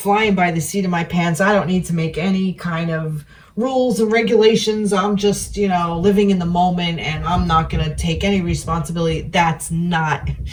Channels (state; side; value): identical; both; correlation 1.00